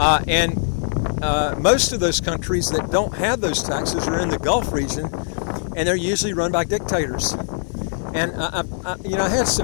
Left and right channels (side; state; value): right; silent; digital silence